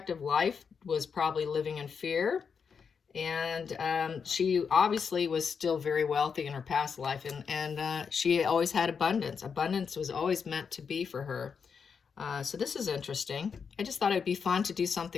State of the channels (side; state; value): right; quieter; 6.2 dB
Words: of life, was probably living in fear. And she obviously was still very wealthy in her past life, and she always had abundance. Abundance was always meant to be for her. So this is interesting. I just thought it'd be fun to do